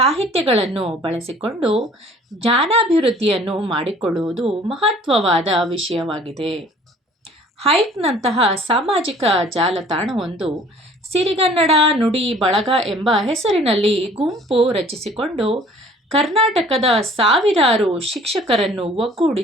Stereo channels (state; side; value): normal; both; correlation 0.53